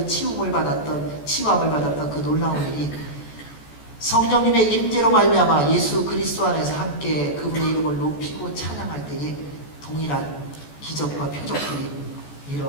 치유함을 받았던 그 놀라운 일이 성령님의 임재로 말미암아 예수 그리스도 안에서 함께 그분의 이름을 높이고 찬양할 때에 동일한 기적과 표적들이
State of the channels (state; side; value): late; right; 14 ms